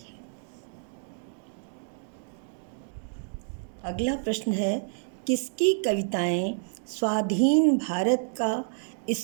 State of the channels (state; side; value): silent; left; digital silence